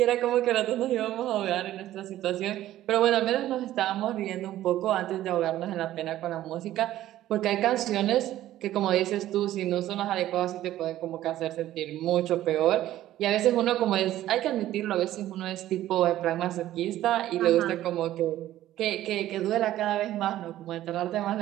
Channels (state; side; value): quieter; left; 13.8 dB